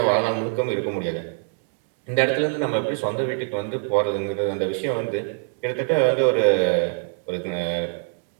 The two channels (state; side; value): silent; left; 63 dB below the other